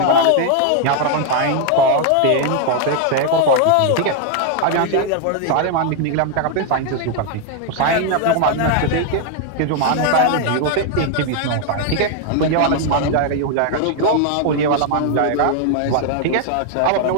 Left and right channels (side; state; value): both; different; correlation 0.00